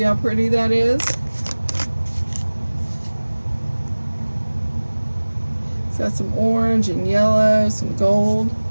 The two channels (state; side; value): inverted; both; correlation -1.00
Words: how pretty that is? It's got some orange and yellow, some gold.